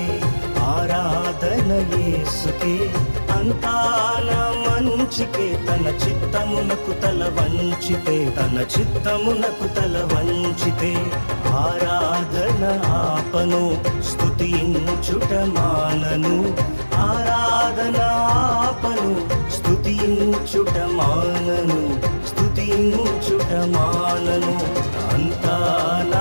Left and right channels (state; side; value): inverted; both; correlation -1.00